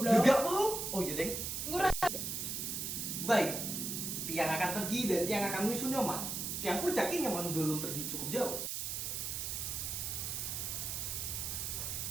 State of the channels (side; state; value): right; noise; hiss, 3 dB below the sound